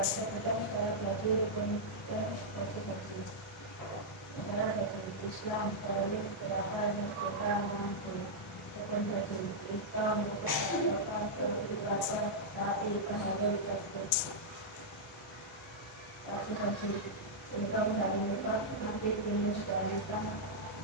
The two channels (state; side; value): normal; both; correlation -0.07